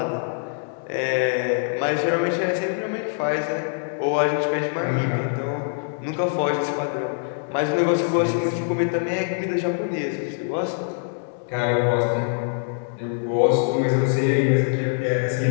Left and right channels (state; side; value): silent; right; digital silence